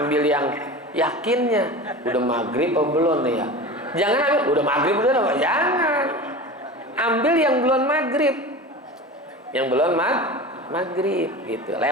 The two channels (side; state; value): both; normal; correlation 0.32